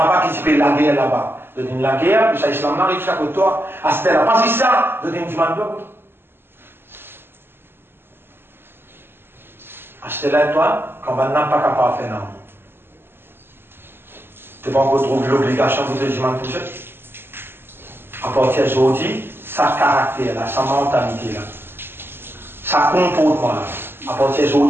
qui se fait la guerre là-bas. Tu dis la guerre, puis ça islam n'arrive chaque côté toi. À ce là pas si ça, tu dis demande doigt. Achetez-la toi, quand on n'a pas capable de faire non. Tu n'as pas encore trouvé l'obligation de te dire toucher. À partir d'aujourd'hui, sa caractère, là, sa mentalité, là, sa comportement, là, à partir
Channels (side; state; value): left; late; 0.11 ms